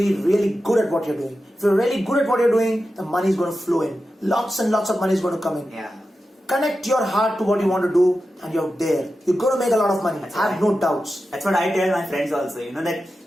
really good at what you're doing. If you're really good at what you're doing, the money is going to flow in. Lots and lots of money is going to come in. Yeah. Connect your heart to what you want to do and you're there. You're going to make a lot of money. Have no doubts. That's what I tell my friends also. That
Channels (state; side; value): normal; both; correlation 0.91